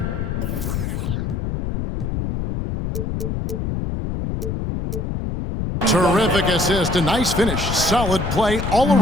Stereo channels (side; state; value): left; noise; rumble, 2 dB below the sound